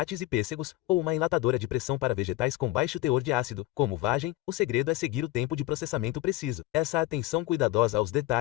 e pêssegos, ou uma enlatadora de pressão para vegetais com baixo teor de ácido, como vagem, o segredo é seguir o tempo de processamento preciso. Essa atenção cuidadosa aos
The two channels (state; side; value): quieter; right; 17.1 dB